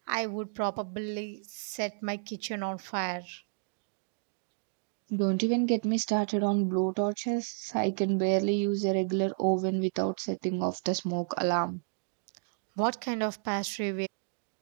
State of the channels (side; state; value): left; silent; digital silence